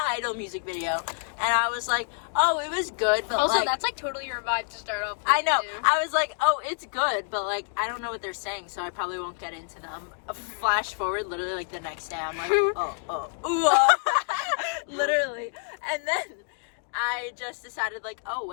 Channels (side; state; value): right; silent; 60 dB below the other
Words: Idol music video, and I was like, oh, it was good, but Also, like, that's like totally your vibe to start off with. I know. Too. I was like, oh, it's good, but like, I don't know what they're saying, so I probably won't get into them. Flash forward, literally like the next day, I'm like, literally. And then I just decided like, oh,